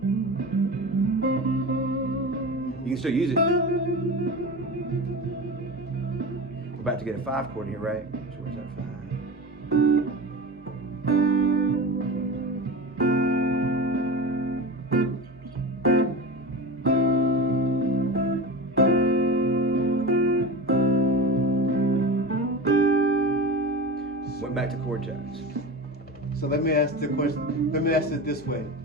You can still use it. We're about to get a 5 chord here, right? So where's that 5? Went back to chord tones. So let me ask the question. Let me ask it this way:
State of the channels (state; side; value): normal; both; correlation 0.28